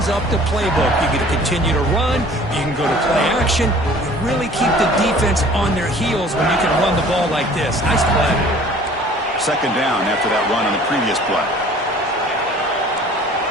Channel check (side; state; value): both; normal; correlation 0.50